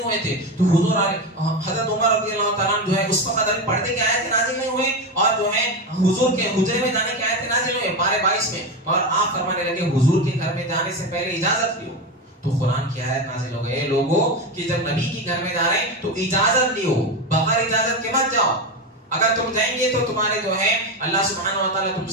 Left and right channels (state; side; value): normal; both; correlation 0.17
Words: ہوئے تھے. تو حضور حضرت عمر رضی اللہ تعالیٰ جو ہے اس وقت ابھی پردے کے آیتیں نازل نہیں ہوئے اور جو ہے حضور کے حجرے میں جانے کی آیتیں نازل ہوئے پارے 22 میں، اور آپ فرمانے لگے حضور کے گھر میں جانے سے پہلے اجازت لیو. تو قرآن کی آیت نازل ہو گئے لوگوں کہ جب نبی کے گھر میں جا رہے ہیں تو اجازت لیو، بغیر اجازت کے مت جاؤ. اگر تم جائیں گے تو تمہارے جو ہے اللہ سبحانہ و تعالیٰ تم